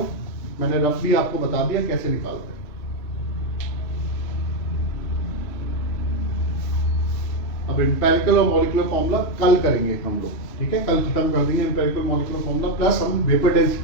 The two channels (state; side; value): late; right; 3.1 ms